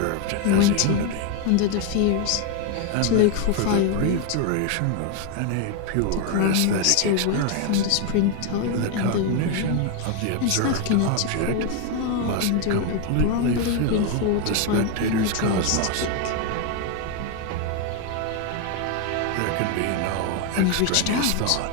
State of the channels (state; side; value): different; both; correlation 0.01